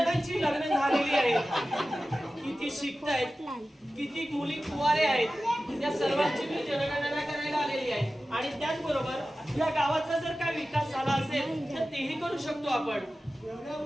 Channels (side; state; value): both; normal; correlation 0.95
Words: लग्न झालेली आहेत. किती शिकतायत. किती मुली कुवारे आहेत. या सर्वांची मी जनगणना करायला आलेली आहे. आणि त्याचबरोबर या गावाचा जर काय विकास झाला असेल तर तेही करू शकतो आपण.